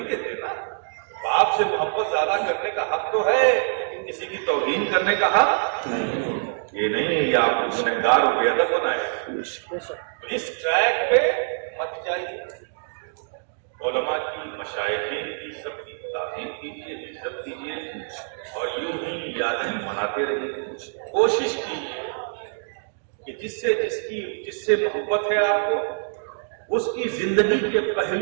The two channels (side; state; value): left; silent; digital silence